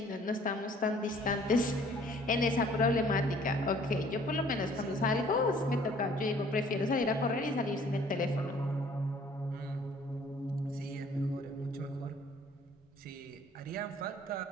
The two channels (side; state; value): both; normal; correlation 0.56